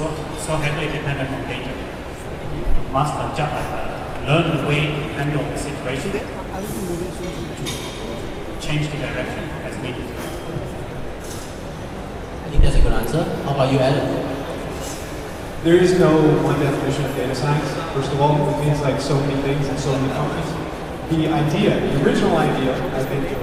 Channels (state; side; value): identical; both; correlation 1.00